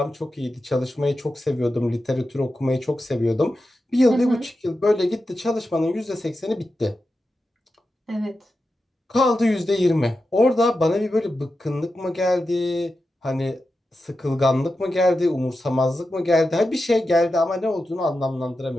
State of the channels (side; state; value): both; normal; correlation 0.90